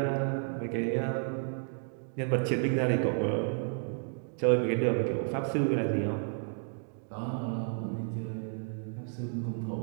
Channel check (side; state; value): left; silent; 56 dB below the other